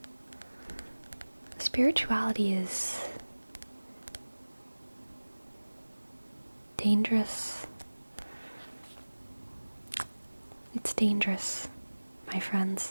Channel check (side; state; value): both; inverted; correlation -1.00